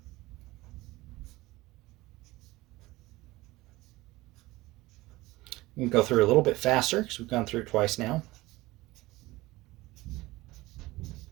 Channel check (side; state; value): left; quieter; 19.6 dB